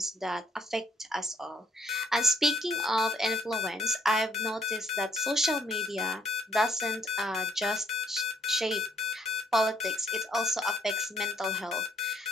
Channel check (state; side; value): normal; both; correlation 0.65